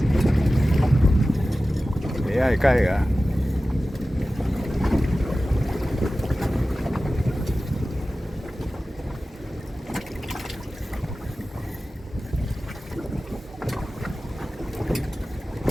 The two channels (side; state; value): both; normal; correlation 0.95